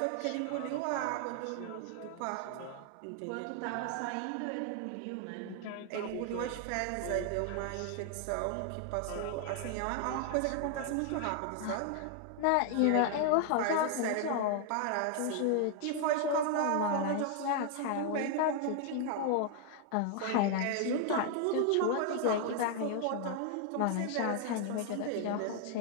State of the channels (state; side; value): different; both; correlation 0.00